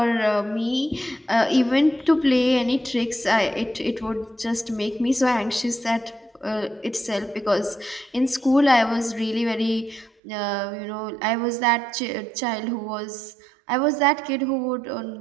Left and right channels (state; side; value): drops out; left; at 10.1 s